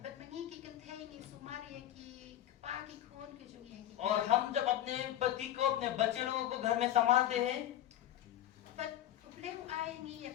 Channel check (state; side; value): quieter; right; 12.4 dB